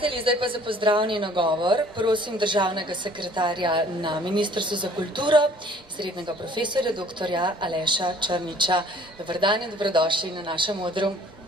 zdaj pa za pozdravni nagovor prosim državnega sekretarja na Ministrstvu za kulturo, srednjega profesorja dr. Aleša Črniča. Dober dan in dobrodošli na našem odru.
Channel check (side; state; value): both; normal; correlation 0.54